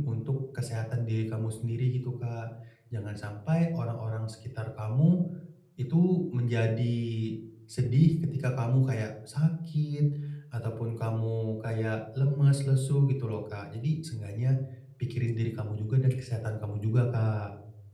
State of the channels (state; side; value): identical; both; correlation 1.00